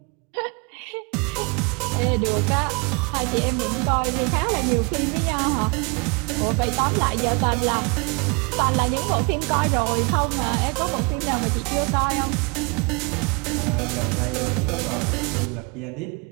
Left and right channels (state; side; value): quieter; left; 31.4 dB